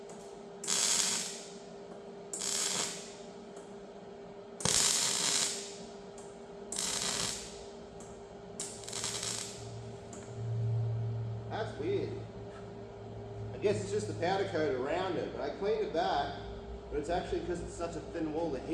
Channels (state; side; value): identical; both; correlation 1.00